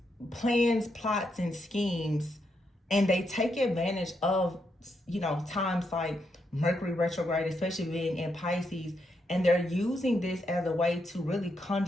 plans, plots, and schemes. And they take advantage of, times like Mercury retrograde, especially being in Pisces. And they're using this as a way to really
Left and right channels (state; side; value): normal; both; correlation 0.81